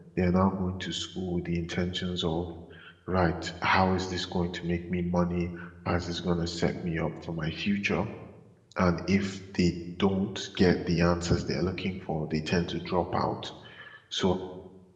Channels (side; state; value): both; identical; correlation 1.00